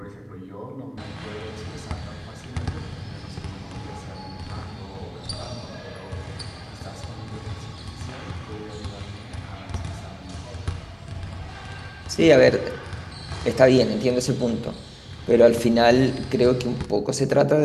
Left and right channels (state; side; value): identical; both; correlation 1.00